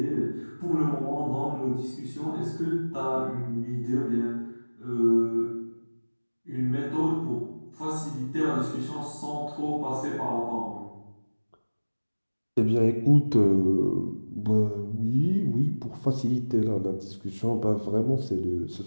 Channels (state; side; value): inverted; both; correlation -1.00